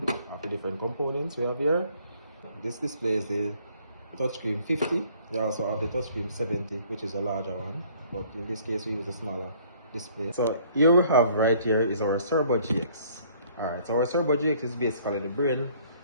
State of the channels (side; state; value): both; inverted; correlation -0.59